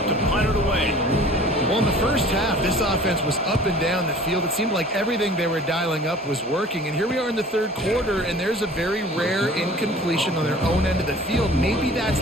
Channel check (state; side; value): normal; both; correlation 0.47